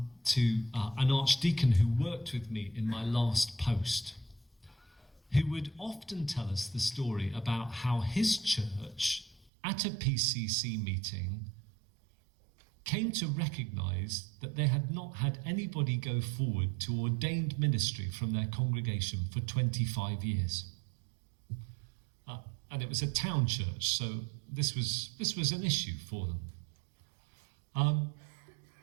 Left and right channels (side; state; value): left; drops out; at 9.5 s